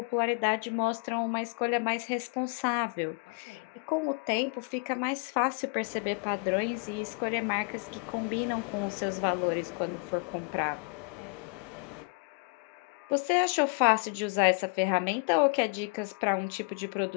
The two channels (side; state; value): right; quieter; 34.7 dB